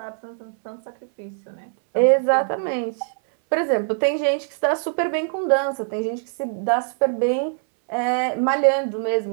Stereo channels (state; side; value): silent; left; 64 dB below the other